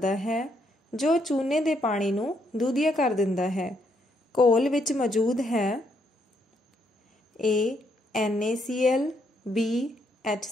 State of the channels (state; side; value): normal; both; correlation 0.74